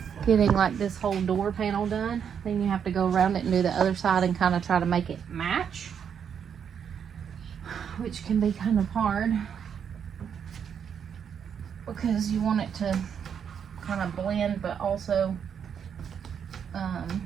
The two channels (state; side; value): quieter; left; 7.7 dB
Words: getting like this whole door panel done, then you have to go around it and do the other side and kind of try to make it match, which can be kind of hard because you want it to kind of blend, but also,